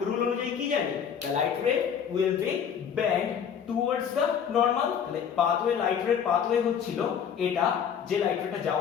রুল অনুযায়ী কি জানি, দ্য লাইট রে will be bend towards the normal. তাহলে পাথওয়ে লাইট রে পাথওয়ে হচ্ছিল এটা, যে লাইট রেটা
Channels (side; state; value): right; quieter; 7.8 dB